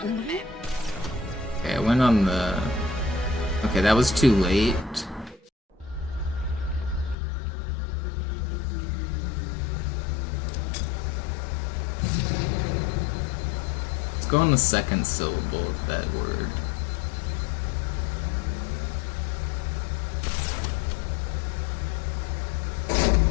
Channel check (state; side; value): drops out; right; at 7.2 s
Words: umbringen? Okay, I went on the... Okay, that was too late. Let's go on the second syllable of that word.